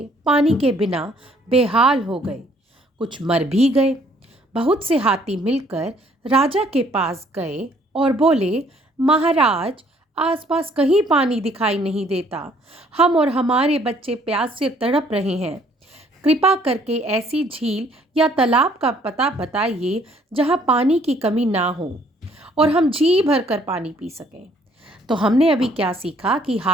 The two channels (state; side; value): normal; both; correlation 0.62